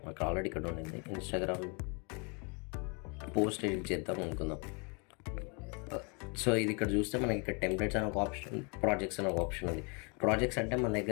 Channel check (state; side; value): quieter; right; 33.7 dB